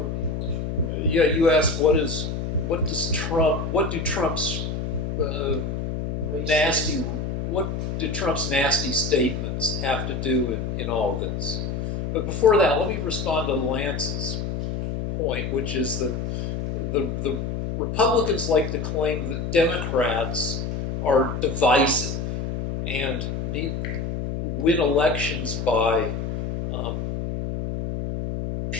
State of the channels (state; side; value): noise; left; hum, 3 dB below the sound